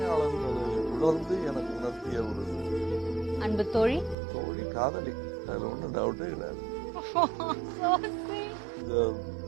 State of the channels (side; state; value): left; drops out; at 4.2 s